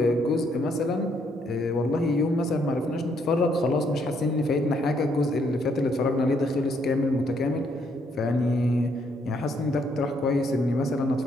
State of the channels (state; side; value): normal; both; correlation 0.71